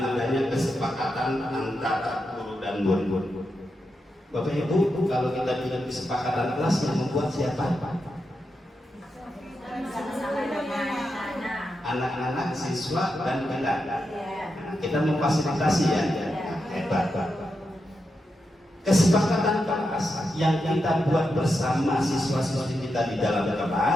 kesepakatan antara guru dan murid. Bapak Ibu, kalau kita bilang kesepakatan kelas yang membuat siapa? Anak-anak, siswa, dan kita. Kita memfasilitasi ya. Hebat. Kesepakatan kelas yang kita buat bersama siswa-siswi kita di dalam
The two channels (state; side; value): normal; both; correlation 0.87